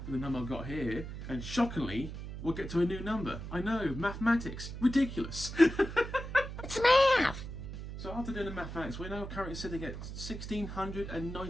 with the number I've got here, and shockingly, we'll get to a new number. I know, mathematics, ridiculous. It's math! So after doing the mathematics, we're now currently sitting at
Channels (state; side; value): noise; right; hum, 8 dB below the sound